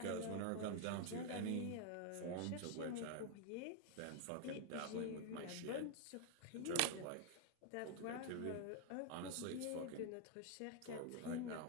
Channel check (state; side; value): different; both; correlation 0.00